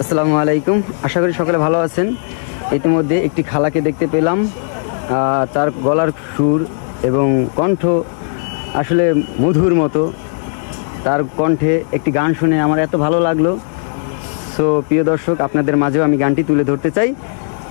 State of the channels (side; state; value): right; silent; 66 dB below the other